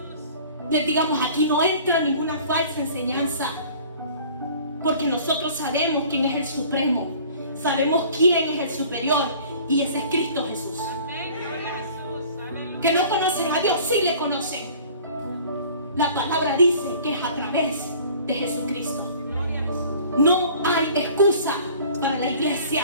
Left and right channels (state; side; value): inverted; both; correlation -0.48